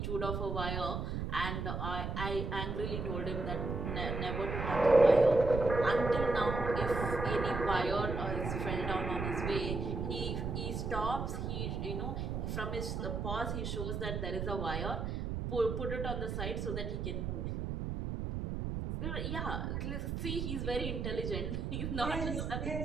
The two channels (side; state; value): right; noise; rumble, 3 dB below the sound